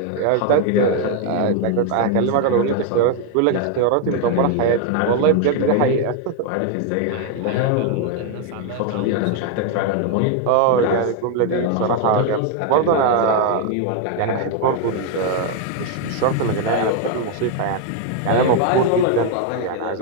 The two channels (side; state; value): both; different; correlation 0.01